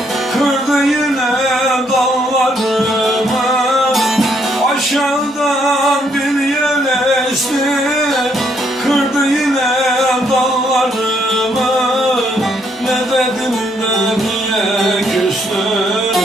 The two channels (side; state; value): both; normal; correlation 0.71